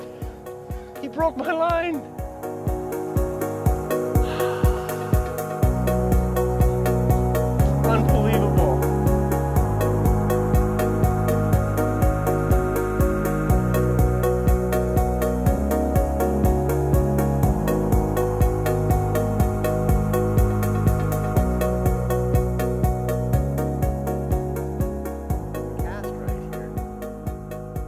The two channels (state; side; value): identical; both; correlation 1.00